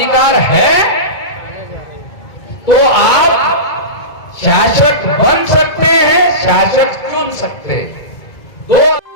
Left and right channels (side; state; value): right; late; 2.0 ms